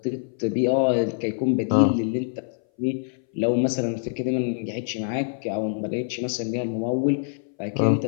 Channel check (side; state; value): right; silent; 59 dB below the other